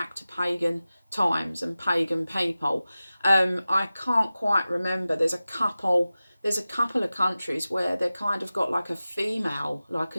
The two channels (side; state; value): both; inverted; correlation -0.96